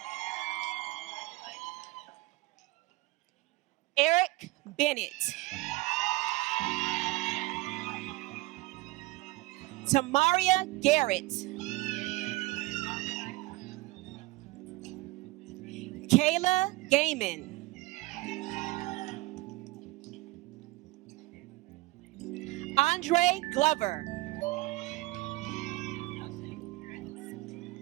Eric Bennett, Tamaria Garrett, Kayla Gaiman, Andre Glover,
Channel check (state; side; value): quieter; left; 21.0 dB